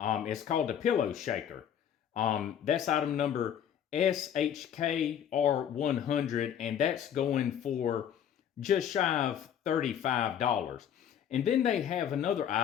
called a pillow shaker. That's item number SHKR100, and that's going for just shy of $35. And then they have another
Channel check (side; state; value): right; quieter; 9.3 dB